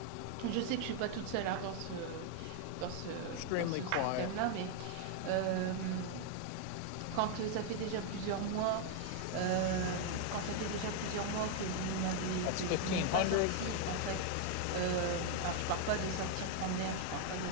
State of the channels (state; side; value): different; both; correlation 0.00